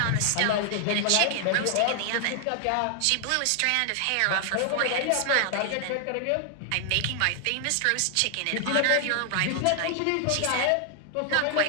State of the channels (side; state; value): both; different; correlation 0.00